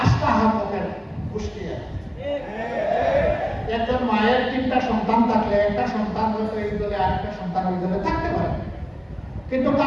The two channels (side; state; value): both; identical; correlation 1.00